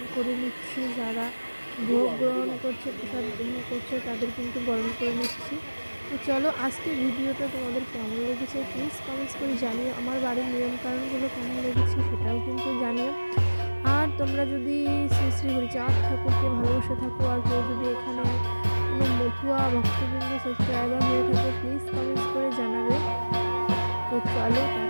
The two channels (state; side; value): inverted; both; correlation -1.00